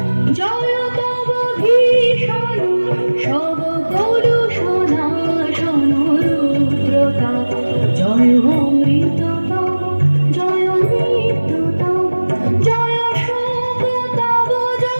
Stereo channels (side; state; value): both; inverted; correlation -1.00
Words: জয় তব ভীষণ সব কলুষণা রুদ্রতা, জয় অমৃত তব, জয় নিত্য তব, জয় শোক তব,